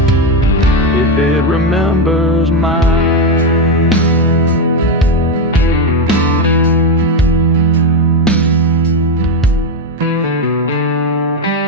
if it remembers mine.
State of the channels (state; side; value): normal; both; correlation 0.09